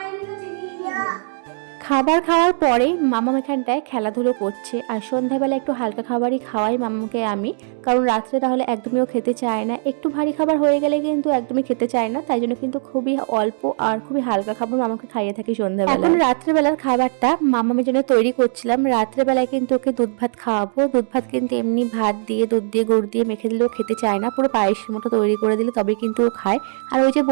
নিয়ে চিনি নিয়ে। খাবার খাওয়ার পরে মামাম এখানটায় খেলাধুলো করছে, আর সন্ধ্যাবেলা একটু হালকা খাবারই খাওয়াই মামাকে আমি, কারণ রাত্রে তাহলে একদমই ও খেতে চায় না। একটু ভারী খাবার হয়ে গেলে কিন্তু একদমই খেতে চায় না, তাই জন্য কিন্তু খুবই অল্প আর খুবই হালকা খাবার মামাকে খাইয়ে থাকি সন্ধ্যাবেলা। এখন রাত্রেবেলার খাবারটা মামামের জন্য তৈরি করছিলাম। রাত্রেবেলায় কিন্তু ওকে দুধ ভাত খাওয়াবো। দুধ ভাত কিন্তু এমনি ভাত দিয়ে দুধ দিয়ে গুড় দিয়ে মেখে দিলেও খেতে চায় না, পুরো পায়েসের মতো তৈরি করে দিলে তবে কিন্তু ও খায়। আর ওই যে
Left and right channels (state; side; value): silent; left; 66 dB below the other